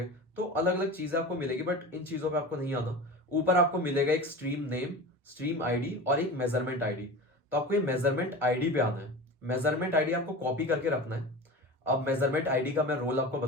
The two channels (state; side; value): normal; both; correlation 0.31